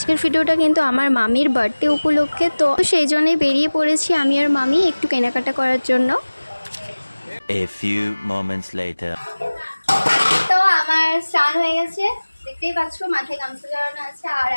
भिडियोटा किन्तु आमार मामिर बार्थडे उपलक्षे, तो सेई जोन्नोई बेरिये पड़ेछि आमी और मामी एकटु केनाकाटा करार जोन्नो। A few moments later. तो आमार स्नान हये गेछे, देखतेई पाচ্ছো माথায় গামছা জড়ানো আছে। আর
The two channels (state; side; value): inverted; both; correlation -1.00